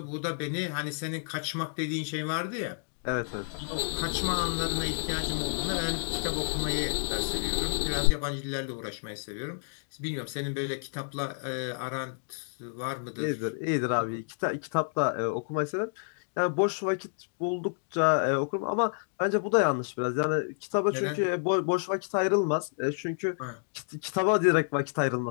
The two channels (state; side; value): silent; right; digital silence